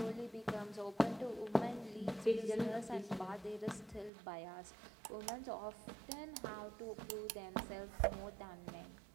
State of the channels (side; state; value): left; drops out; at 4.1 s